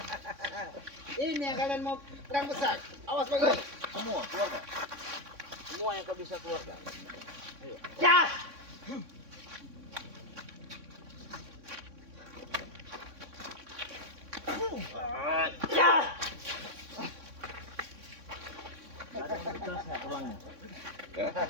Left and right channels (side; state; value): left; late; 3.6 ms